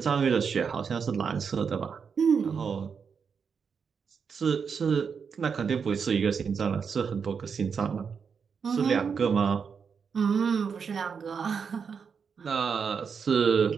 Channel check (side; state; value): left; quieter; 6.2 dB